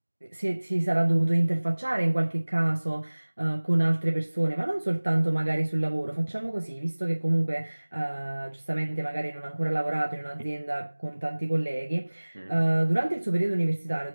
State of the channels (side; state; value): both; inverted; correlation -1.00